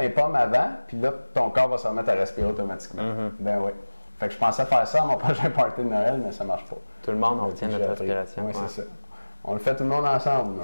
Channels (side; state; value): both; inverted; correlation -1.00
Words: les pommes avant, puis là, ton corps va se remettre à respirer automatiquement. Ben oui. Fait que je pensais faire ça à mon prochain party de Noël, mais ça marche pas. Tout le monde retient notre respiration. Oui, c'est ça. On le fait tout le monde ensemble,